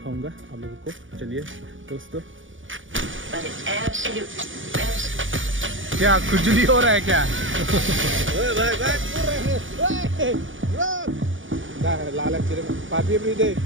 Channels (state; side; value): late; left; 0.57 ms